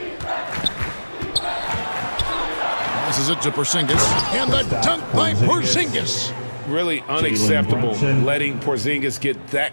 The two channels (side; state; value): both; inverted; correlation -1.00